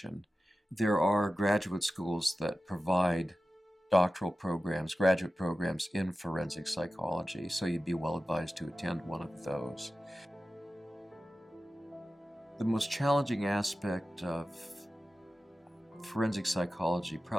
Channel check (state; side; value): normal; both; correlation 0.94